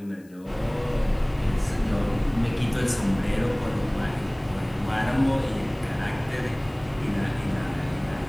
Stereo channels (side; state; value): left; noise; hiss, 30 dB below the sound